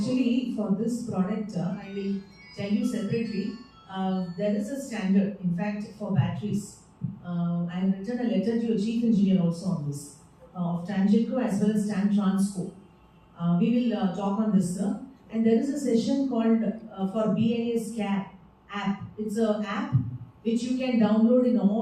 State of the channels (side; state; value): both; identical; correlation 1.00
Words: for this product, I will tell you separately. There is a standard. In fact, for batteries, I have written a letter to your chief engineer also on this, of Tangentco as well as Stan Transco. We will talk on this, sir. And there is a session called for BAS Care app. It's an app which you can download in